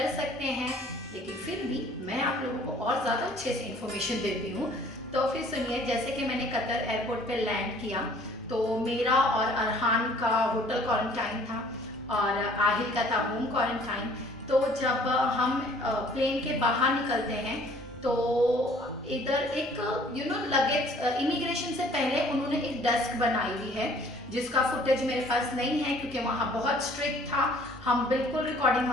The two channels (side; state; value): both; normal; correlation 0.55